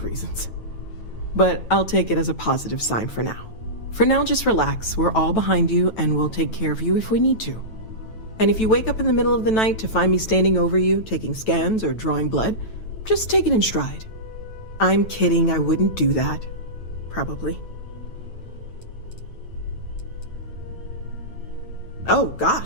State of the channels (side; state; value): right; late; 9.1 ms